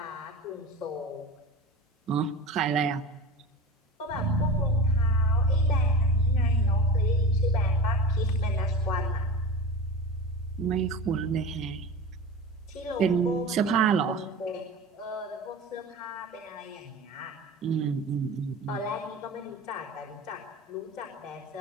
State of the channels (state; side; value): normal; both; correlation 0.31